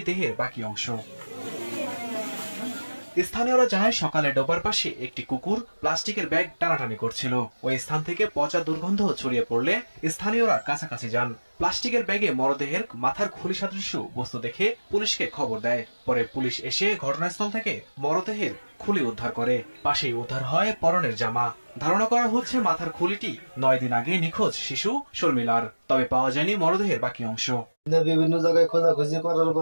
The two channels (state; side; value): inverted; both; correlation -1.00